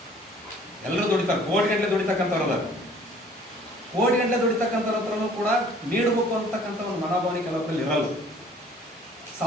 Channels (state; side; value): normal; both; correlation 0.54